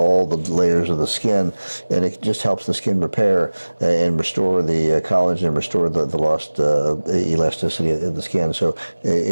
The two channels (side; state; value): both; inverted; correlation -1.00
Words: the layers of the skin, and it just helps the skin repair and restore the collagen and restore the lost elasticity of the skin. So